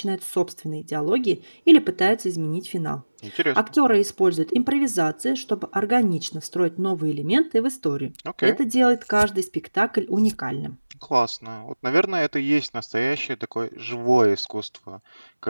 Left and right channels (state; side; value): inverted; both; correlation -1.00